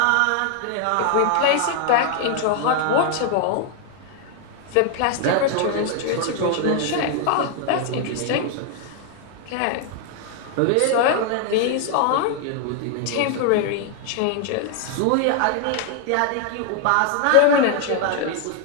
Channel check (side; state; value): both; different; correlation 0.00